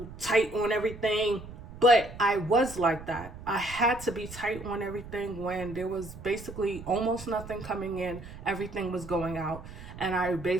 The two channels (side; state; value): right; noise; rumble, 14 dB below the sound